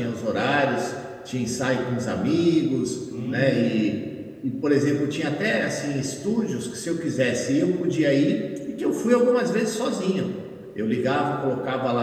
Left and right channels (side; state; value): both; identical; correlation 1.00